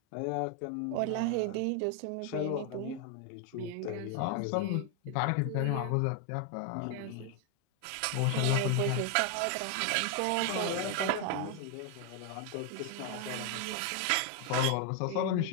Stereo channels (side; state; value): both; different; correlation 0.00